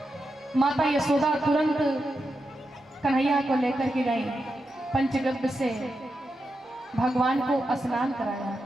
माता यशोदा तुरंत कन्हैया को लेकर के गई, पंचगव्य से भगवान को स्नान कराया,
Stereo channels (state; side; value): normal; both; correlation 0.87